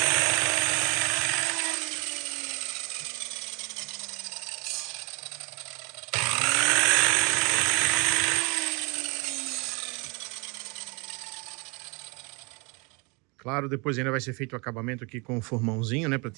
Claro, depois ainda vai ser feito o acabamento aqui com o formãozinho, né, para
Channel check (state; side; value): quieter; left; 30.0 dB